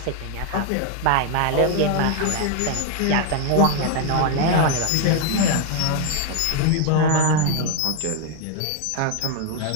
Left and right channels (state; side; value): different; both; correlation 0.00